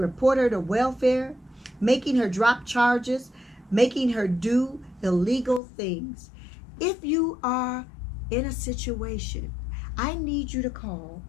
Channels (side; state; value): right; drops out; at 5.6 s